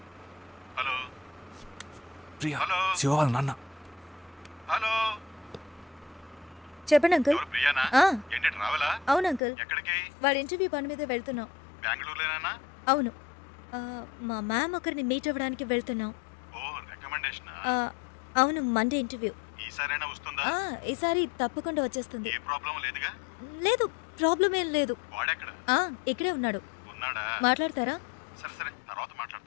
హలో ప్రియా, హలో శివ వాళ్ళ నాన్న. హలో, చెప్పండి అంకుల్. ఎవరు ప్రియానా? ఏంటి ట్రావెలా? అవును అంకుల్, ఎక్కడికి? వాడి ఇంటర్వ్యూ పని మీద వెళ్తున్నాం. బెంగళూరులోనేనా? అవును, మా మ్యామ్ ఒకరిని మీట్ అవ్వడానికి వెళ్తున్నాం. ఓ, రికమెండేషనా? అవును, మండే ఇంటర్వ్యూ. ఈసారైనా వస్తుందా? ఈసారి తప్పకుండా వచ్చేస్తుంది. ఏ ప్రాబ్లం లేదుగా? లేదు, ప్రాబ్లం ఏం లేదు. వాడెక్కడ? ఇక్కడే ఉన్నాడు. ఉన్నాడా? మాట్లాడతారా? సరే సరే, తర్వాత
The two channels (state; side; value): drops out; right; at 9.4 s